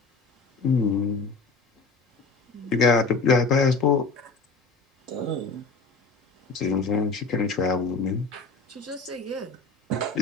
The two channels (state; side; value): quieter; right; 4.0 dB